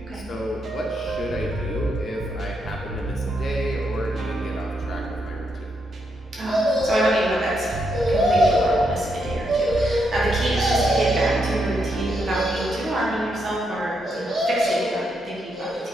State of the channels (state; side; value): normal; both; correlation 0.80